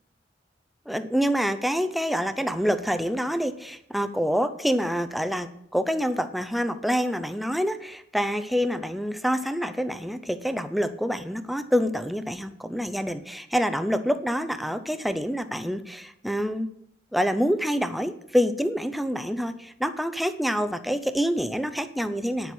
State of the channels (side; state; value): both; normal; correlation 0.92